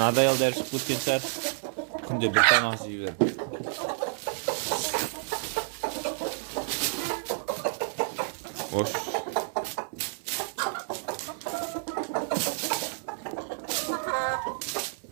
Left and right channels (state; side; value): silent; left; 57 dB below the other